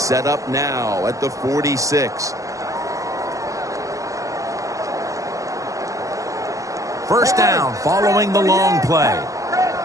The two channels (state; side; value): late; left; 0.16 ms